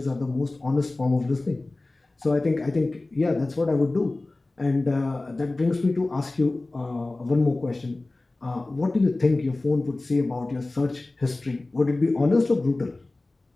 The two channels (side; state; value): right; quieter; 3.0 dB